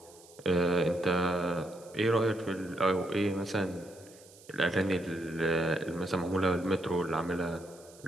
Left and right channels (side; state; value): right; noise; hiss, 23 dB below the sound